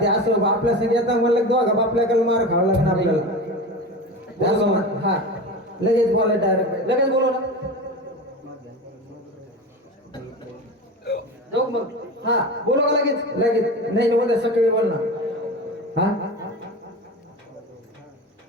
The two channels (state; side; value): normal; both; correlation 0.28